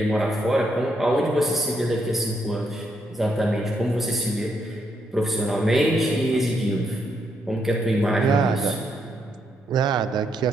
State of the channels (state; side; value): normal; both; correlation 0.77